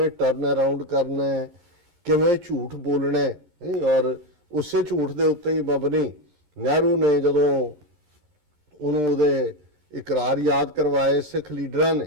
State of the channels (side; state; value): left; late; 13 ms